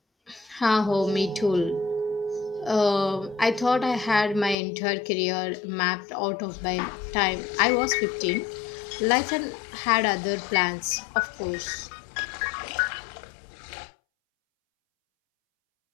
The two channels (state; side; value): drops out; right; at 4.5 s